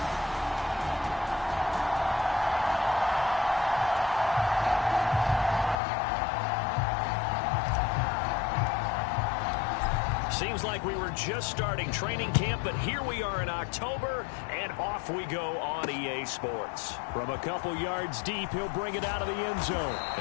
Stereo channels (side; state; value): right; drops out; at 5.8 s